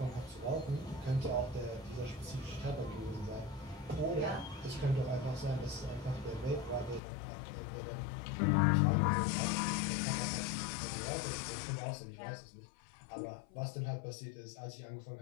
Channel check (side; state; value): right; drops out; at 7.0 s